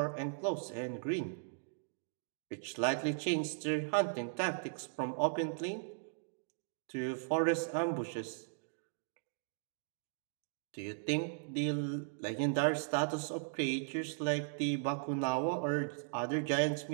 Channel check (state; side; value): silent; left; digital silence